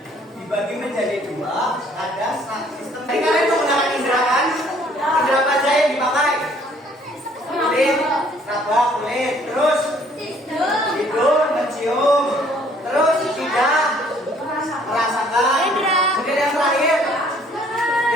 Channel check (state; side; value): normal; both; correlation 0.60